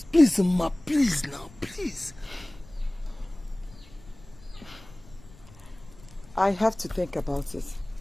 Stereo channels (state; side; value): noise; left; rumble, 22 dB below the sound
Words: Please, Ma, please now, please. I have to think about it.